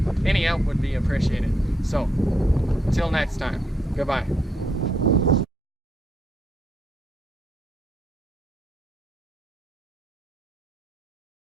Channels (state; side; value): normal; both; correlation 0.76